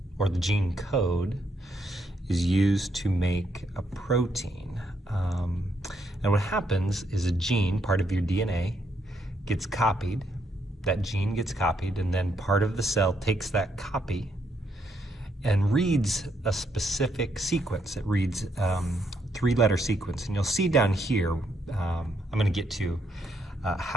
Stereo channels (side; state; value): both; normal; correlation 0.76